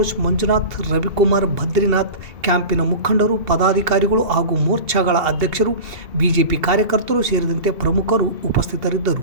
ಮಂಜುನಾಥ್, ರವಿಕುಮಾರ್, ಬದ್ರಿನಾಥ್, ಕ್ಯಾಂಪಿನ ಮುಖಂಡರು, ಪದಾಧಿಕಾರಿಗಳು ಹಾಗೂ ಮೋರ್ಚಾಗಳ ಅಧ್ಯಕ್ಷರು, ಬಿಜೆಪಿ ಕಾರ್ಯಕರ್ತರು ಸೇರಿದಂತೆ ಪ್ರಮುಖರು ಉಪಸ್ಥಿತರಿದ್ದರು.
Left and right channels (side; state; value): left; late; 2.7 ms